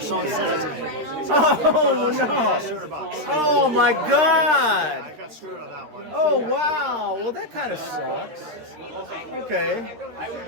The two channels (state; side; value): late; left; 13 ms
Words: said it to me. Oh no! $200. Oh my God! I got screwed on that one. Oh wow! Well, that kind of sucks. Okay.